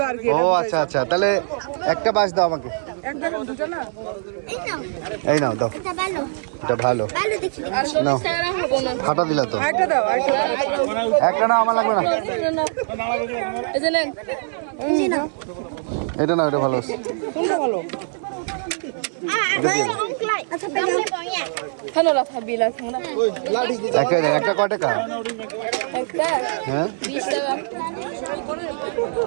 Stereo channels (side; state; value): left; silent; 64 dB below the other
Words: আর কি। ও আচ্ছা আচ্ছা, তাহলে একটা বাস দাও আমাকে। এক জায়গা দুটো না। এই নাও, এই নাও, দাও। এটা ভালো এটা ভালো। ভালো দেখি। নাও, ফাটা দিলা তো। আরেকটা দাও, আরেকটা দাও। একটা না, আমার লাগবে না। এই যে নেন। এই যে নাও। এটা না, এটা ভালো। কোনটা ভালো? আচ্ছা পেলে পয়া খানোলা থাবিলা খানোলা একটা কয় টাকা একটা হ্যাঁ 20 টাকা